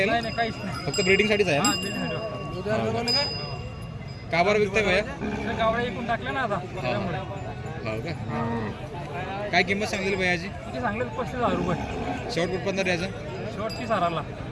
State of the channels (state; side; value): identical; both; correlation 1.00